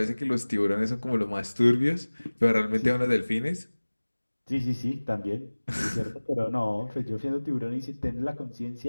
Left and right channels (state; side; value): inverted; both; correlation -1.00